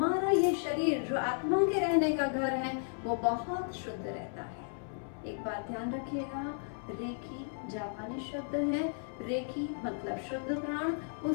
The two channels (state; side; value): silent; right; 55 dB below the other